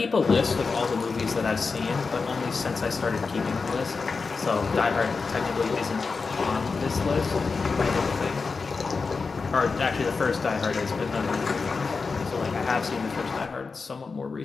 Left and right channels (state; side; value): quieter; right; 4.6 dB